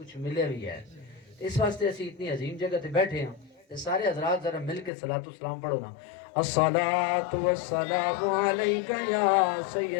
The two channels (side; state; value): right; drops out; at 4.9 s